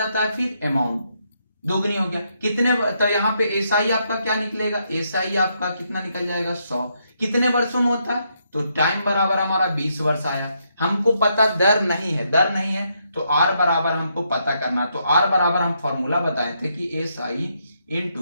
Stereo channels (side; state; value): both; inverted; correlation -0.77